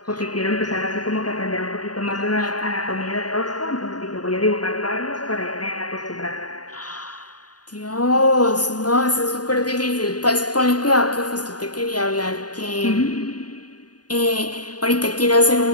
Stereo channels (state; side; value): late; right; 0.69 ms